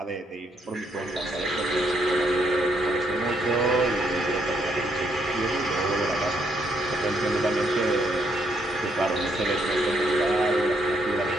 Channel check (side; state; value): both; normal; correlation 0.73